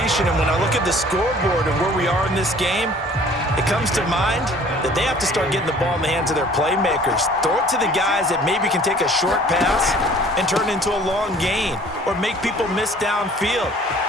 And when I look at the scoreboard and where we are in this game, it comes to mind that they have to start getting the ball in the hands of their playmakers. Throw it to the guys that maybe can take a short pass and turn it into a long gain or make people miss downfield.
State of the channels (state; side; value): normal; both; correlation 0.52